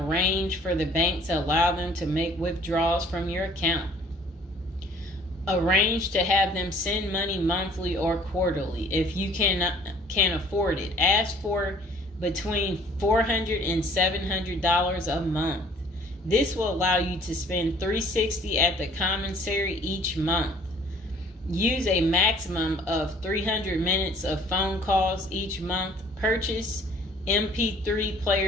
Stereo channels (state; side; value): normal; both; correlation 0.55